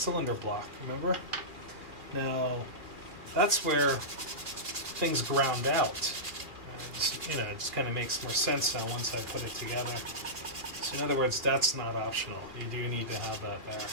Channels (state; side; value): late; left; 2.4 ms